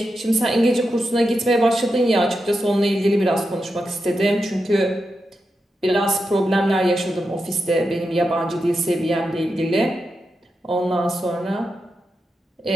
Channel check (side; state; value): both; normal; correlation 0.88